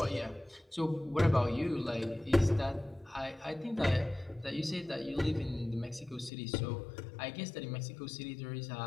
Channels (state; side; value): drops out; right; at 6.3 s